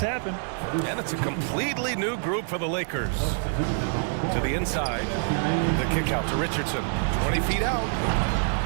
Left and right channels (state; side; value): silent; left; digital silence